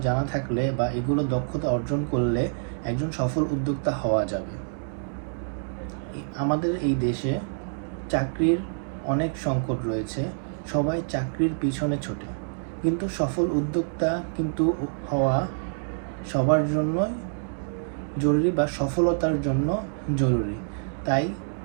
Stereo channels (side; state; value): left; silent; digital silence